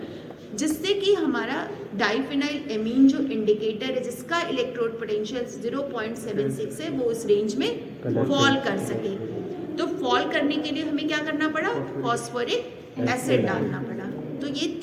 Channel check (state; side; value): identical; both; correlation 1.00